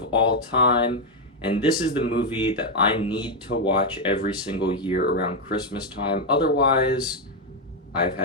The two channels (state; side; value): normal; both; correlation 0.03